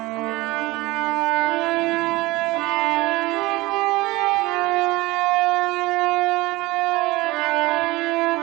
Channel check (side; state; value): left; quieter; 20.6 dB